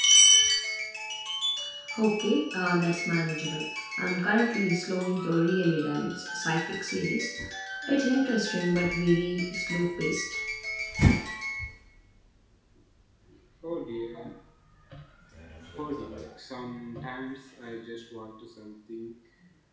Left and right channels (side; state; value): both; identical; correlation 1.00